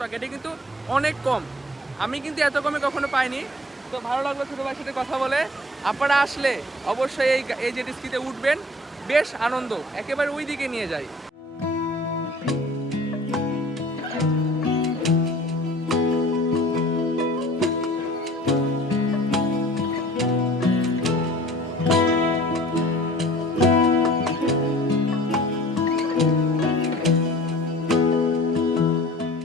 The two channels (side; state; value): both; normal; correlation 0.47